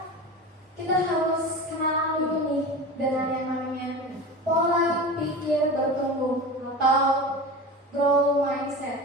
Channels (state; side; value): normal; both; correlation 0.30